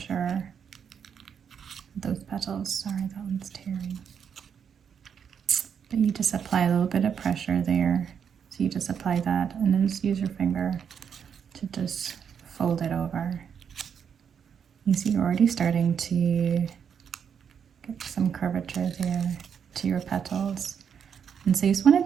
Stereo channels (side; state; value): left; quieter; 7.5 dB